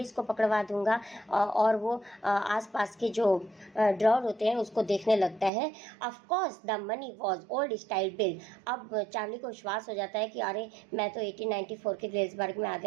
को पकड़वा दूंगा। और वो आसपास के जो ड्रॉअर होते हैं उसको देखने लगता है। Of course the money was old style bill. अब चार्ली को विश्वास हो जाता है कि अरे मैं तो 1894 के ग्लेसबर्ग में आ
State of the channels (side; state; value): left; drops out; at 5.5 s